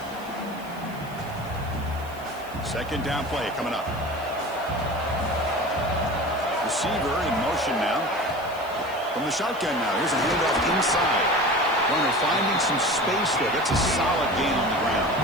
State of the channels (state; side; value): noise; right; hiss, 22 dB below the sound